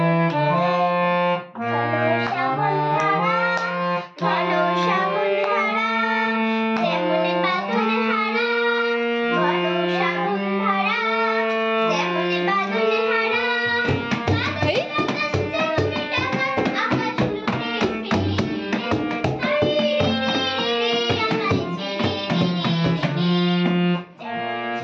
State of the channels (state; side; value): identical; both; correlation 1.00